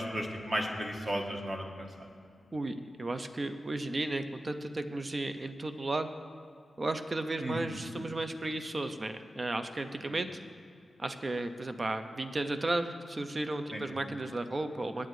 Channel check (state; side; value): normal; both; correlation 0.94